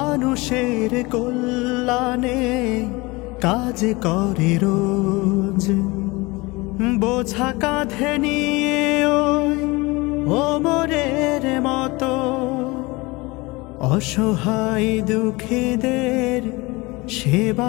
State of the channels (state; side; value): quieter; right; 23.7 dB